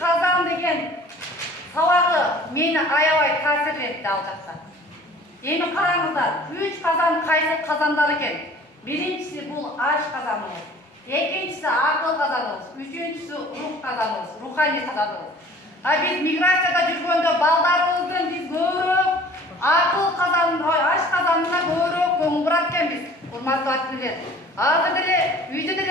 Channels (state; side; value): normal; both; correlation 0.49